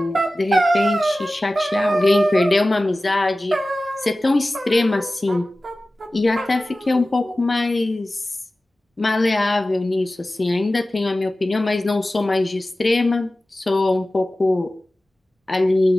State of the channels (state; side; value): normal; both; correlation 0.96